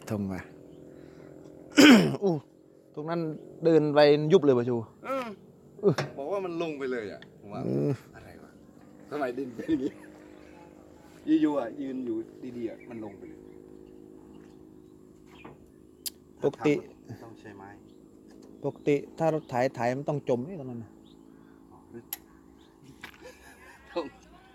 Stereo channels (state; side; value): identical; both; correlation 1.00